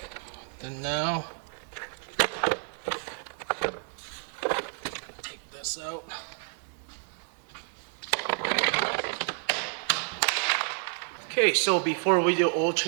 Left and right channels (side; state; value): left; silent; 58 dB below the other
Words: And now take this out. Okay, so before we do oil